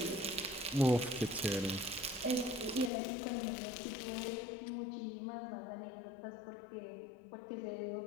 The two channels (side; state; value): right; drops out; at 2.9 s